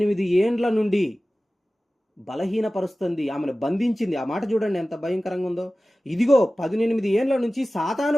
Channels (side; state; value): both; normal; correlation 0.96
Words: ఏండ్ల నుండి బలహీనపరుస్తుంది, ఆమెను బంధించింది. ఆ మాట చూడండి ఎంత భయంకరంగా ఉందో. ఇదిగో 18 ఏండ్ల నుంచి